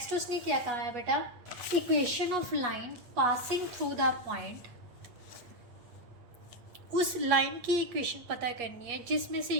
उसने क्या कहा है बेटा? Equation of line passing through the point. उस लाइन की इक्वेशन पता करनी है जिसमें से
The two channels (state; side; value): late; left; 8.5 ms